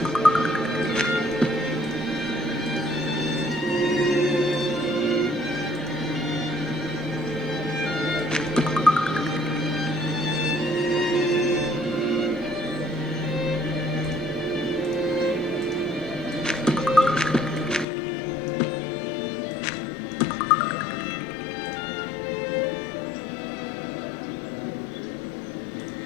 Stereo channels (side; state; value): right; drops out; at 17.9 s